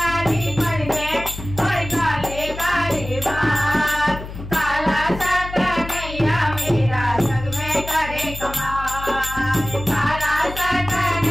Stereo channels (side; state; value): left; noise; hum, 11 dB below the sound